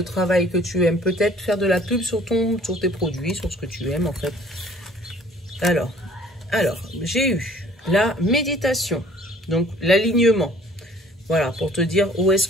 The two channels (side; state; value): both; normal; correlation 0.54